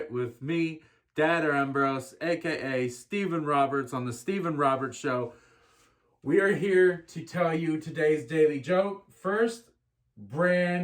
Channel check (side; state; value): both; identical; correlation 1.00